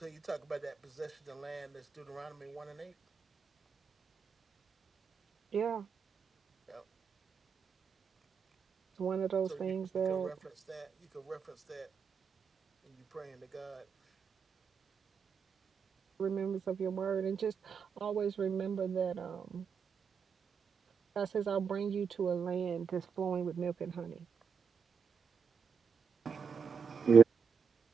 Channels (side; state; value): left; quieter; 6.1 dB